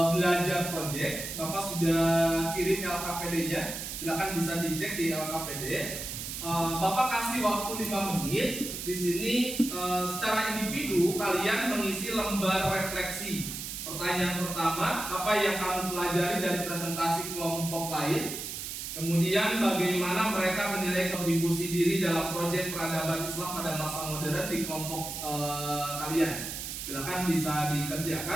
belajar proyek. Bapak sudah kirim LKPD-nya. Silakan bisa dicek di LKPD. Bapak kasih waktu 5 menit. Di sini secara individu kalian mengisi lembar refleksi. Pertanyaan pertama, apa yang kamu pelajari dari presentasi kelompok lain? Kemudian bagaimana mereka menilai kontribusi diri dalam proyek peradaban Islam pada masa modern di kelompok kalian. Silakan bisa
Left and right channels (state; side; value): noise; right; hiss, 6 dB below the sound